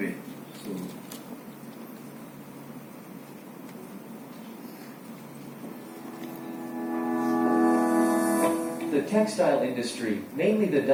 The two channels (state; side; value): identical; both; correlation 1.00